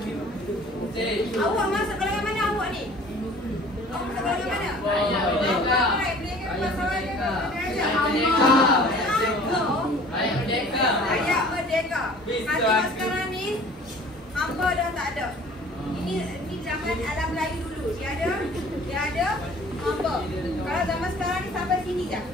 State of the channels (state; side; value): normal; both; correlation 0.49